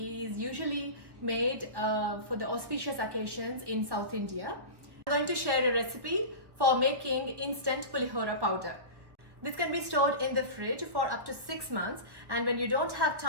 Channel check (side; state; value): left; late; 1.1 ms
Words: usually made for the auspicious occasions in South India. I'm going to share a recipe for making instant pulihora powder. This can be stored in the fridge for up to 6 months, and when you don't have